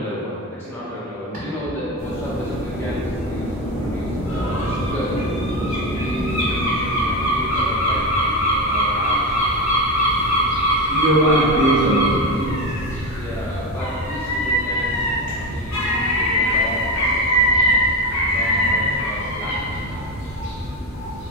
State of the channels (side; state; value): both; normal; correlation 0.17